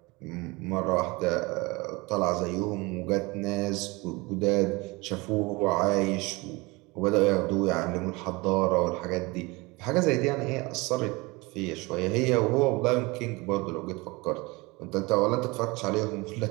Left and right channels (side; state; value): left; quieter; 24.5 dB